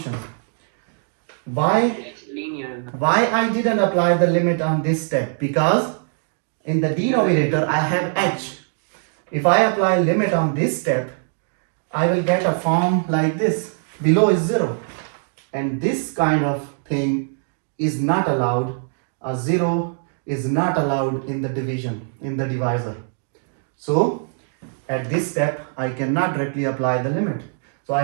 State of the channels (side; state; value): left; silent; 64 dB below the other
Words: Why It's linear. I didn't apply the limit on this step? Because in the denominator I have h. If I apply limit on this step, I will get a form like this. Below is 0, and this kind of thing is not allowed. A 0 is not allowed in the division, in the divisor. So at this step I cannot directly apply the limit. So I